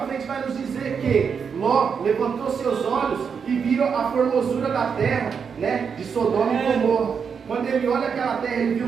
frente vai nos dizer que Ló levantou seus olhos e viu a formosura da terra, né, de Sodoma e Gomorra. Quando ele olha aquela terra, ele viu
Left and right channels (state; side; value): quieter; left; 6.4 dB